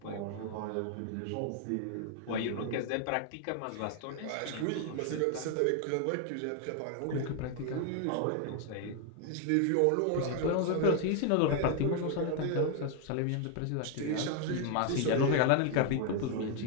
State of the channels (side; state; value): both; different; correlation 0.01